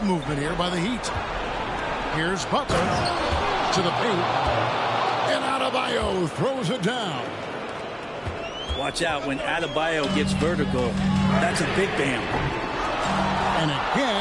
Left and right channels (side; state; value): both; identical; correlation 1.00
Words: movement here by the Heat. Here's Butler to the paint. And Adebayo throws it down. Watch out when Adebayo gets vertical. That's a big Bam. And